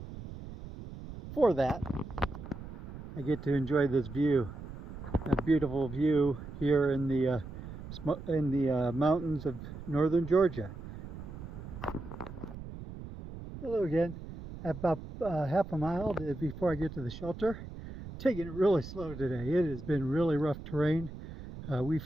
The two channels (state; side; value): noise; right; rumble, 11 dB below the sound